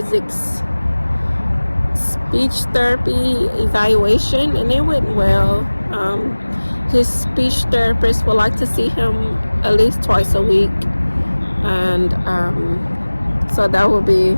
speech therapy evaluation, and it went well. His speech therapist would like to see him at least twice a week, and so that will be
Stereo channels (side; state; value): both; inverted; correlation -1.00